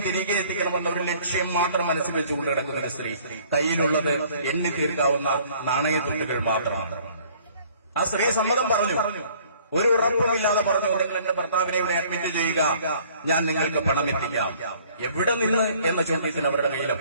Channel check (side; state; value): both; inverted; correlation -0.56